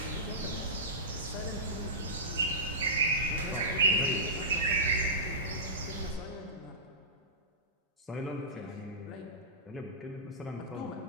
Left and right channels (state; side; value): normal; both; correlation -0.19